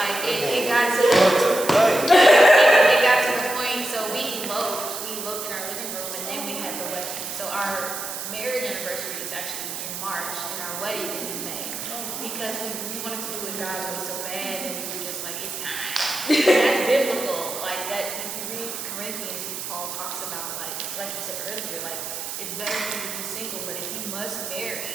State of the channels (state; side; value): noise; right; hiss, 6 dB below the sound